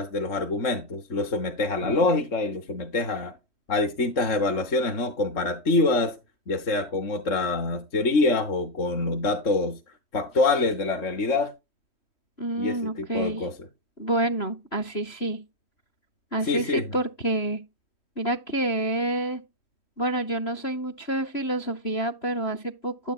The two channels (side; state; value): right; late; 3.1 ms